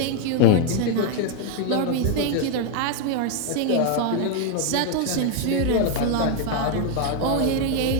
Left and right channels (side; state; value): both; different; correlation 0.00